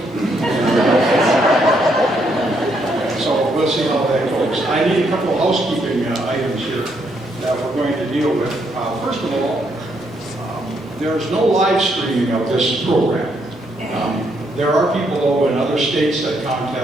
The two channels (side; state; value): both; normal; correlation 0.74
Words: So we'll see how that goes. I need a couple of housekeeping items here that we're going to deal with. First of all, there's no live streaming of this program. There are people though in other states that